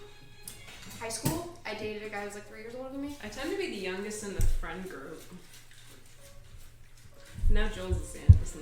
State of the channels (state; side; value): identical; both; correlation 1.00